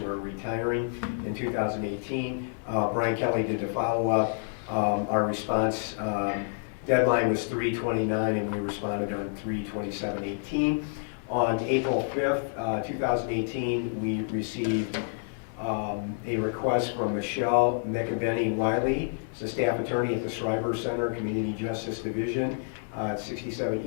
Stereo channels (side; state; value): right; silent; digital silence